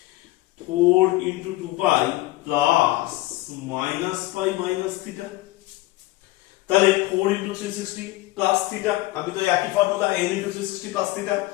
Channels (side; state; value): right; quieter; 18.4 dB